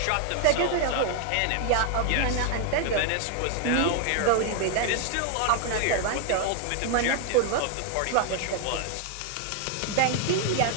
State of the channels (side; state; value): both; different; correlation 0.00